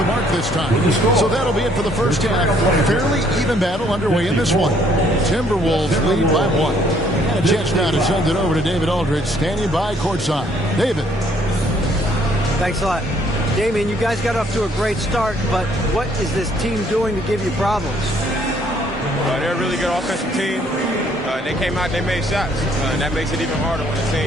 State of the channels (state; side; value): normal; both; correlation 0.64